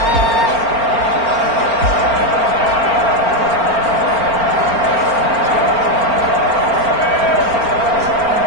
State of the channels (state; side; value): late; left; 4.4 ms